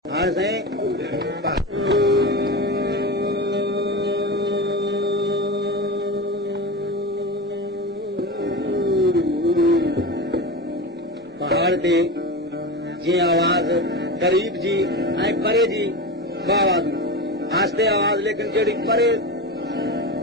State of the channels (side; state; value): both; normal; correlation 0.24